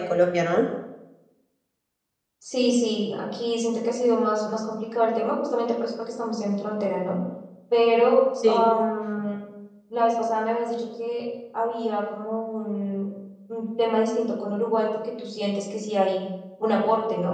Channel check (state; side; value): identical; both; correlation 1.00